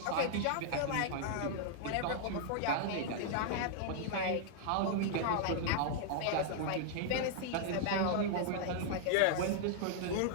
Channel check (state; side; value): different; both; correlation -0.01